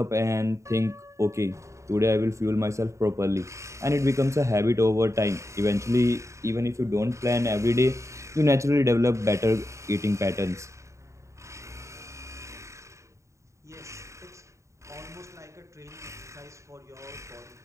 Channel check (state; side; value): late; left; 0.14 ms